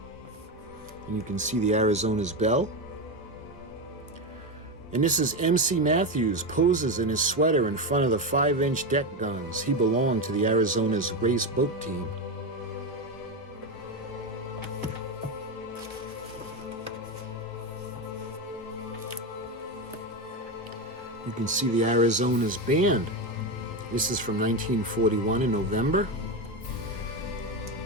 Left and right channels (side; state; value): both; normal; correlation 0.14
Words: And you can see the Arizona's bell. And this is MC Matthews poses in his sweater in front of the 5-inch deck guns. He belonged to the Arizona's race boat team. You can see the Arizona's band. This is from 1941 in November.